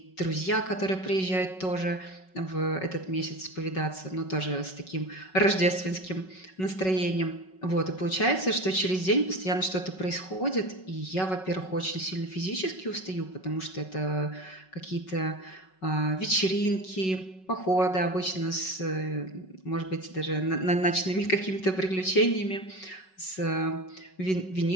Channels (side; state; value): right; late; 5.4 ms